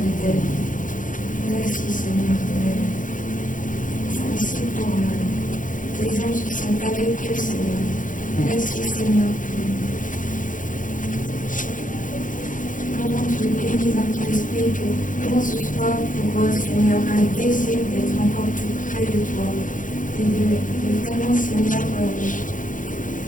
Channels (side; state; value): right; late; 0.38 ms